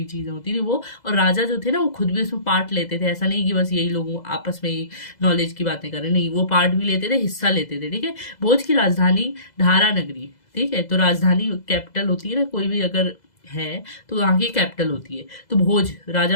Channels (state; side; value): late; right; 2.0 ms